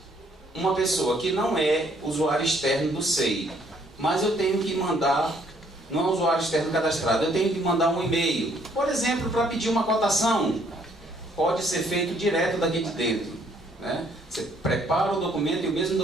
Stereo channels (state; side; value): normal; both; correlation 0.65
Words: uma pessoa que não é usuário externo do SEI, mas eu tenho que mandar, não é usuário externo cadastrado, eu tenho que mandar um e-mail, por exemplo, para pedir uma cotação, pode ser feito direto daqui de dentro, né? Você prepara o documento e o mesmo